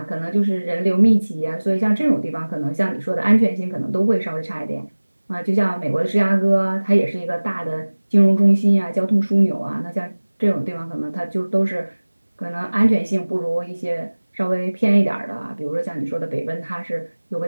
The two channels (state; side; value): inverted; both; correlation -1.00